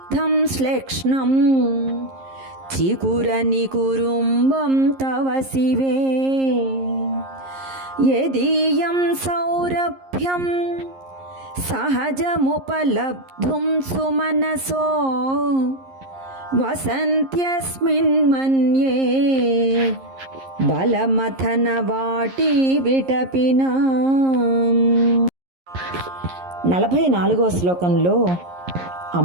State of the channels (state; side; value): late; left; 11 ms